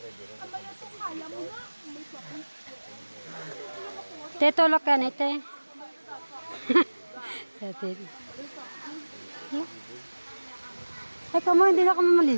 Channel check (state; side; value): inverted; both; correlation -1.00